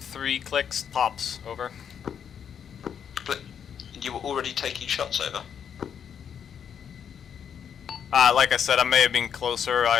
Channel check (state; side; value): quieter; right; 8.0 dB